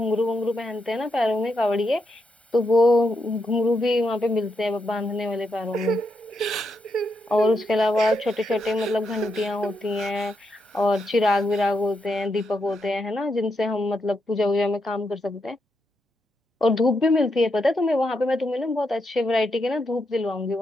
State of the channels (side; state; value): both; normal; correlation 0.82